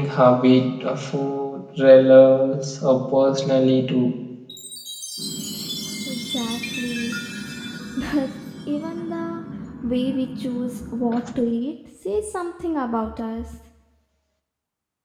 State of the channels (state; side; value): identical; both; correlation 1.00